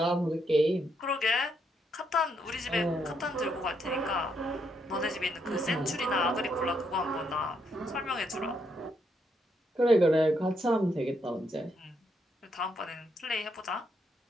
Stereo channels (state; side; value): normal; both; correlation 0.76